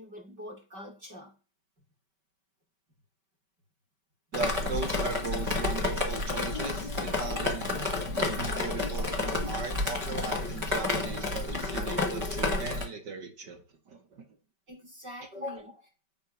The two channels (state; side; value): late; left; 5.2 ms